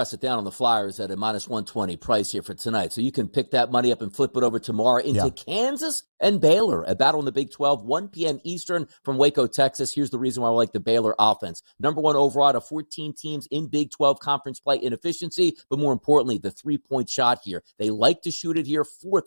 it down on the Flyers at a minus 120 price here for tonight. So you can pick that money up and flip it over tomorrow into Kansas and Baylor, a battle in the Big 12, 1 p.m. Eastern from Waco, Texas. Here's the reason why I like the Baylor offense. Number one overall out of 14 teams in Big 12 conference play in efficiency, but more importantly, the three-point shot here. They like to shoot it here, 4th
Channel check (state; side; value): inverted; both; correlation -1.00